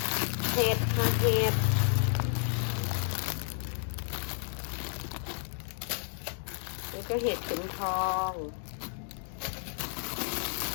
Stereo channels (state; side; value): silent; right; digital silence